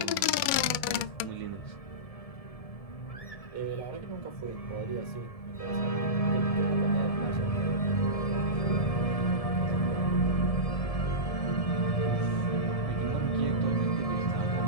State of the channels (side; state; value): right; late; 2.2 ms